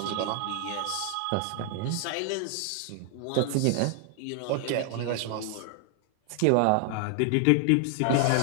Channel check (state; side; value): different; both; correlation 0.00